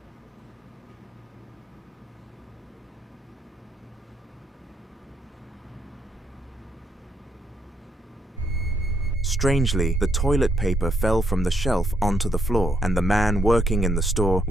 Strangely, the toilet paper fell from the shelf onto the floor, and the man working in the store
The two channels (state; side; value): normal; both; correlation 0.75